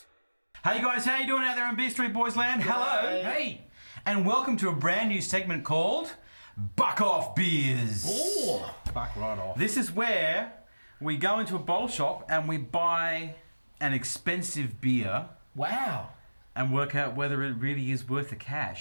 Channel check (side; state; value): both; inverted; correlation -1.00